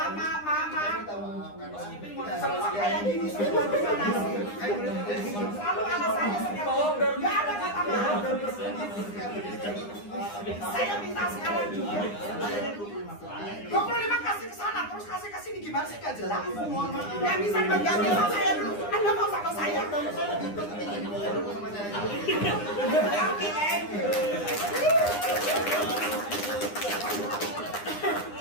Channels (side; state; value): right; late; 9.8 ms